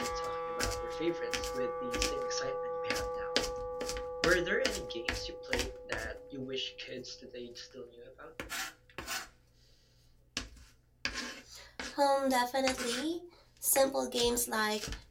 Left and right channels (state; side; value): identical; both; correlation 1.00